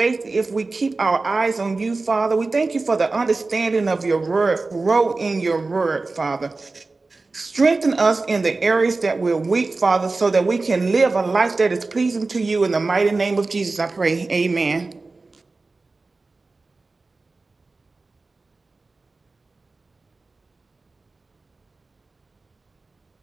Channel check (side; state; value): left; quieter; 3.6 dB